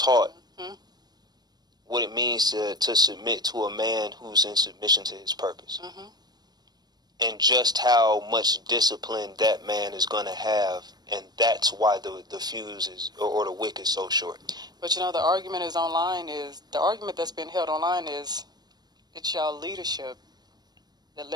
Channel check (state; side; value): late; left; 0.20 ms